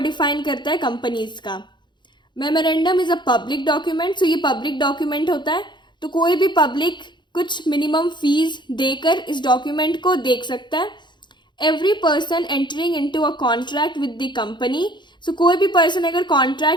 करता है कंपनीज का. Memorandum is a public document. So ये पब्लिक डॉक्यूमेंट होता है, तो कोई भी पब्लिक कुछ मिनिमम फीस देकर इस डॉक्यूमेंट को देख सकता है. Every person entering into a contract with the company. So कोई भी पर्सन अगर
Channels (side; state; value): right; late; 0.22 ms